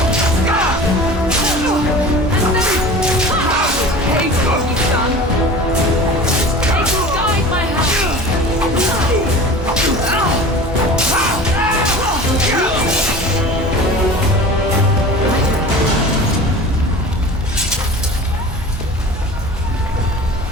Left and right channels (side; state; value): both; normal; correlation 0.38